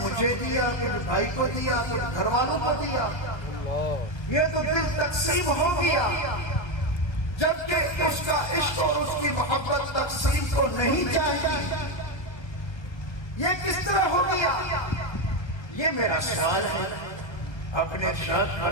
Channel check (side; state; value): right; late; 1.3 ms